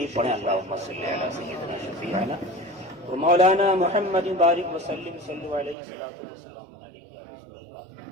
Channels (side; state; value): left; drops out; at 5.8 s